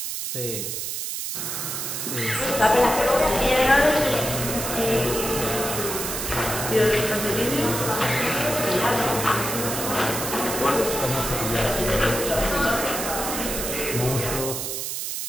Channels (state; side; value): noise; right; hiss, 4 dB below the sound